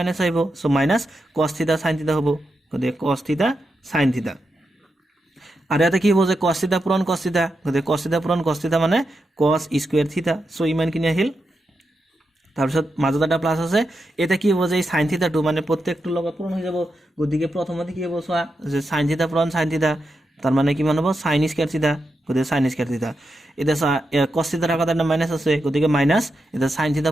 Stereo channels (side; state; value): both; normal; correlation 0.86